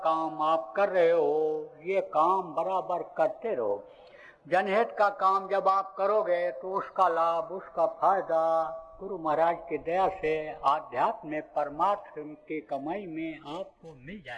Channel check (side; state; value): both; identical; correlation 1.00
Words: काम आप कर रहे हो, ये काम बराबर करते रहो। जनहित का काम जब आप करोगे तो उसका लाभ, उसका फायदा गुरु महाराज की दया से आध्यात्म में परमात्मा की कमाई में आपको मिल